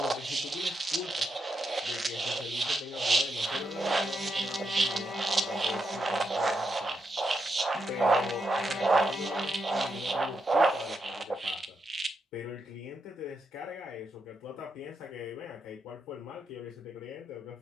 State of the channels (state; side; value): normal; both; correlation 0.83